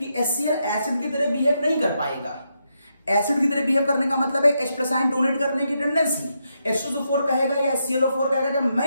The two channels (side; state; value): both; inverted; correlation -0.82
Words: HCl एसिड की तरह बिहेव नहीं कर पाएगा। एसिड की तरह बिहेव करने का मतलब है H+ आयन डोनेट करने की टेंडेंसी। H2SO4 कहेगा या HClO4 कहेगा कि